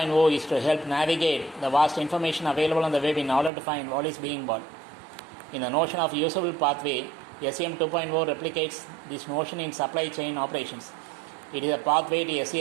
is to help navigate the vast information available on the web in order to find what is being bought. In the notion of usable pathway, SCM 2.0 replicates this notion in supply chain operations. It is a pathway to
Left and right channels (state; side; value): drops out; left; at 3.5 s